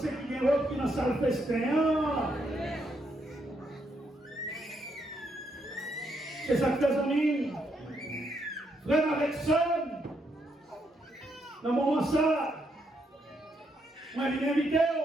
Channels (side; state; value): both; normal; correlation 0.77